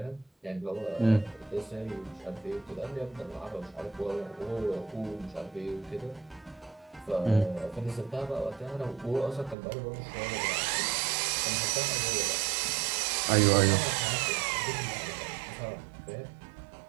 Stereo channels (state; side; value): drops out; left; at 9.6 s